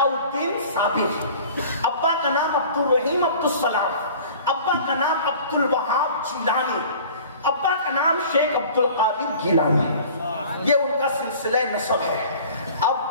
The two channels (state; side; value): inverted; both; correlation -0.45